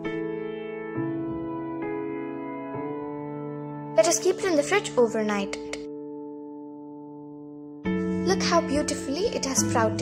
Let us keep it in the fridge overnight. Look how beautifully it has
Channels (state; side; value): identical; both; correlation 1.00